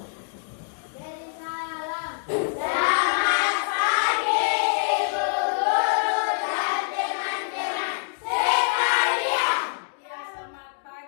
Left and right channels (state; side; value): silent; right; digital silence